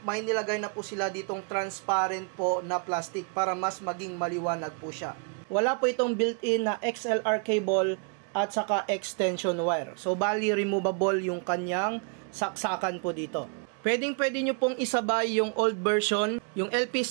nilagay na po sila ditong transparent po na plastic para mas maging maliwanag po siya. Wala po itong built-in na XLR cable at saka extension wire. So, bali removable yung kanyang saksakan po dito. Pwede nyo pong isabay yung old version, yung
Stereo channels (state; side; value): quieter; left; 39.5 dB